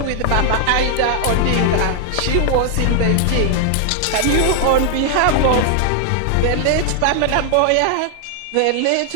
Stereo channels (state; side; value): different; both; correlation 0.00